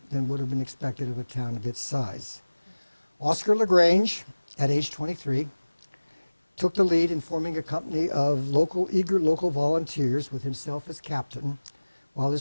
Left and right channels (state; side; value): inverted; both; correlation -1.00